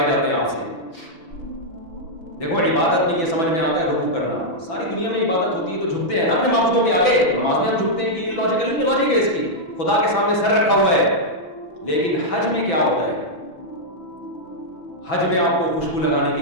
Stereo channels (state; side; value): late; right; 6.0 ms